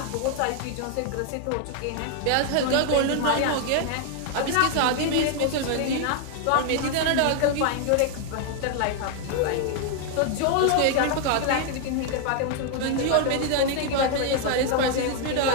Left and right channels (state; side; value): different; both; correlation 0.00